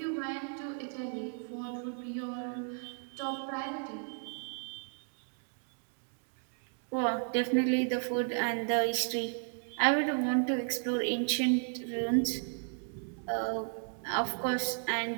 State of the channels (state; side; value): silent; left; 55 dB below the other